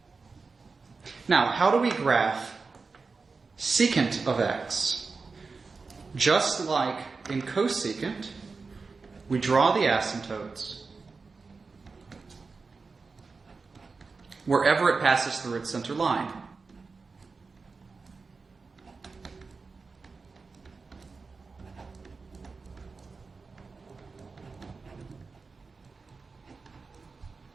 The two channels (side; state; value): left; quieter; 4.4 dB